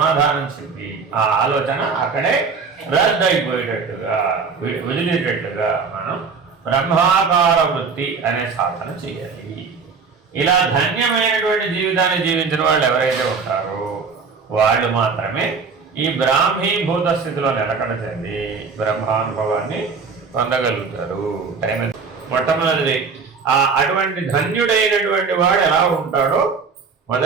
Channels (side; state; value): left; quieter; 5.2 dB